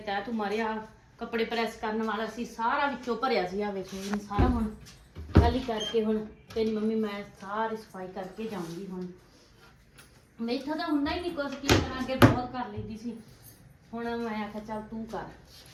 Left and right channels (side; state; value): both; identical; correlation 1.00